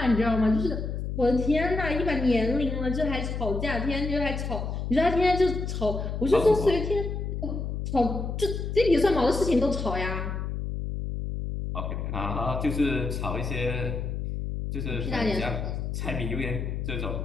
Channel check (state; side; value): noise; left; hum, 3 dB below the sound